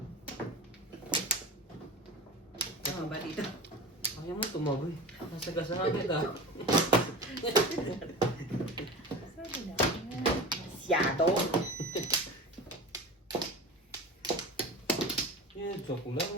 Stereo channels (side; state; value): both; normal; correlation 0.32